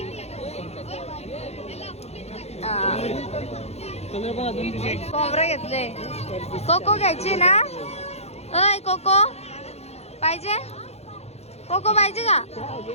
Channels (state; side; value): late; right; 0.31 ms